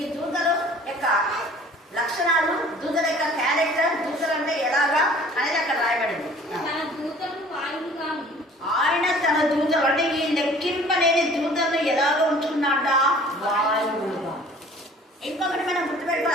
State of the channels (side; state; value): both; normal; correlation 0.51